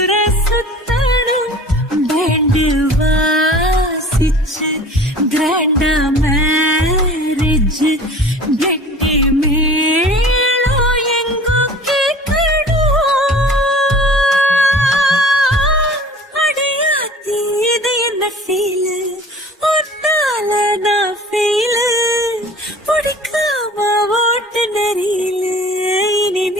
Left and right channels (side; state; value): both; normal; correlation 0.44